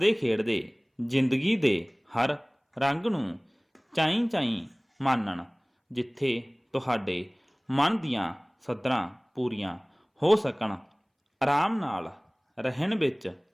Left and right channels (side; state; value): both; identical; correlation 1.00